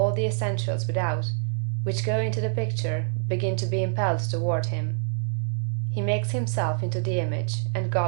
the essentials without, which go into the picture, begin to be impelled toward him. He makes himself into the image, and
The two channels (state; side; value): silent; left; 55 dB below the other